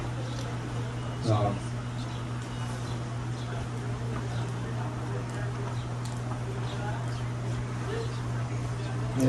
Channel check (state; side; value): identical; both; correlation 1.00